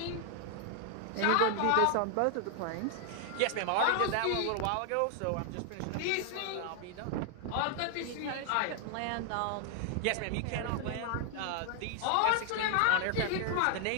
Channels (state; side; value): different; both; correlation 0.00